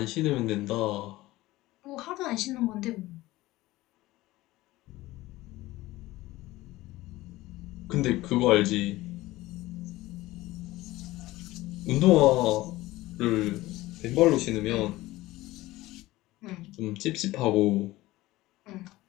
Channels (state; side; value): quieter; right; 18.0 dB